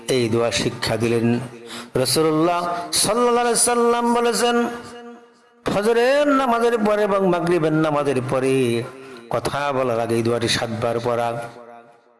এই দোয়া শিক্ষা দিলেন। রাসূলুল্লাহ সাল্লাল্লাহু আলাইহি সাল্লাম বলেছেন, ফজরের নামাজের পরে এবং মাগরিবের নামাজের পরে কথা বলার আগে এই দোয়াটি 7 বার পড়া।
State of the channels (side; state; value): both; identical; correlation 1.00